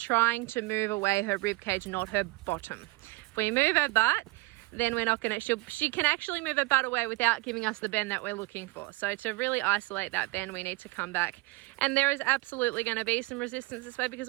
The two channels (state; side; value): quieter; left; 23.5 dB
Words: to move away her rib cage, not her bottom. If we move her butt, then we're not going to, she can actually move her butt away without giving us the bend that we're looking for. So to really isolate that bend, we need to come back. And there is absolutely going to be some resistance this way